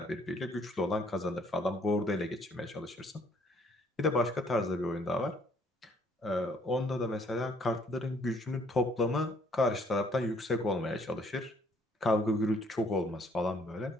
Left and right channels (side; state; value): both; normal; correlation 0.63